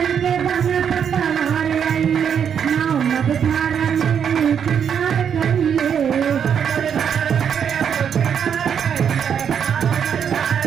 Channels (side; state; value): left; quieter; 7.9 dB